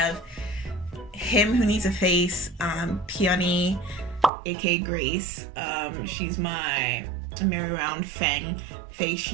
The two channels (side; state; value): left; drops out; at 4.3 s